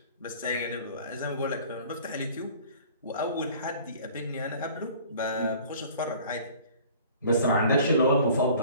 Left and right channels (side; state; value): both; inverted; correlation -0.48